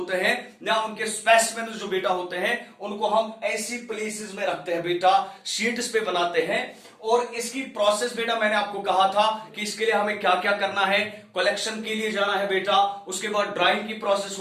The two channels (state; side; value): identical; both; correlation 1.00